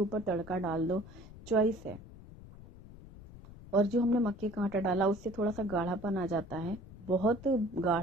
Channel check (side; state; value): left; noise; rumble, 17 dB below the sound